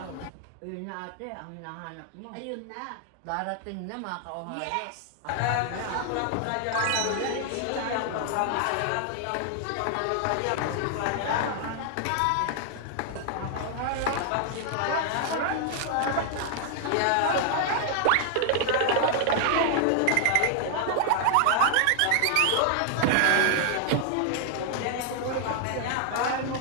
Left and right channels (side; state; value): both; different; correlation 0.00